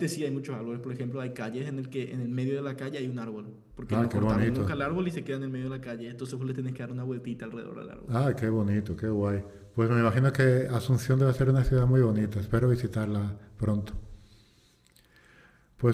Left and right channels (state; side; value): identical; both; correlation 1.00